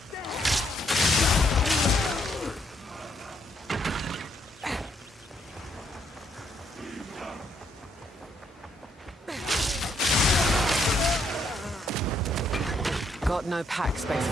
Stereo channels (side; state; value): both; normal; correlation 0.73